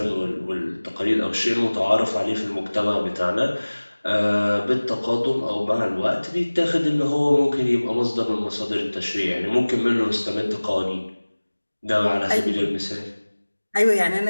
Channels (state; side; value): inverted; both; correlation -1.00